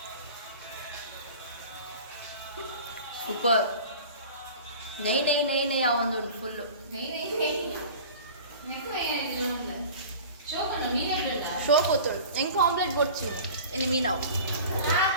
ಕುಕ್ಕರ್ ನೈ ನೈ ನೈ ನೈ ಆ ಒಂದು ಫುಲ್ಲು ಶೋ పోతుడు ఇంకో ఆమ్లెట్ కొచ్చు ఎన్ని మీనావు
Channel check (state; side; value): inverted; both; correlation -0.40